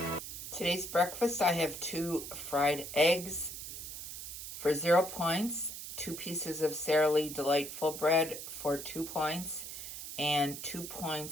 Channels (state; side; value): noise; right; hiss, 9 dB below the sound